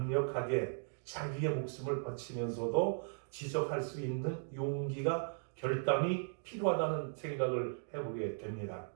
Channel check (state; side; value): silent; left; digital silence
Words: 자기의 목숨을 바치면서도 지적할 수 있는 용기가 결단이 필요하다는 생각을 해보게 됩니다.